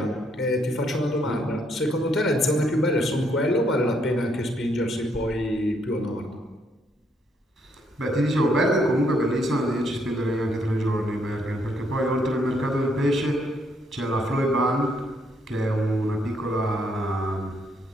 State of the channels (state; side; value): normal; both; correlation 0.72